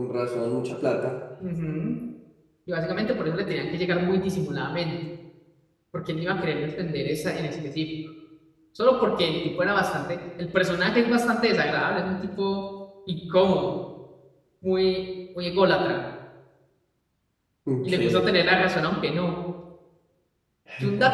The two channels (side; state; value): both; identical; correlation 1.00